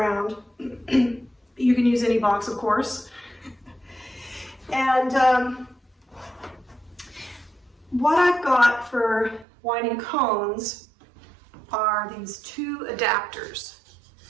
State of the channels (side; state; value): left; drops out; at 9.5 s